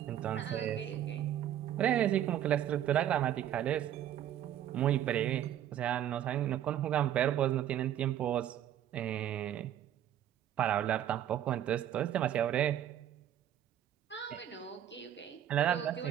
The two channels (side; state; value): left; quieter; 11.0 dB